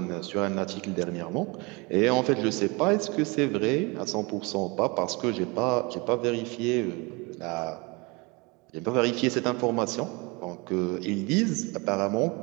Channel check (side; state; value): left; quieter; 27.3 dB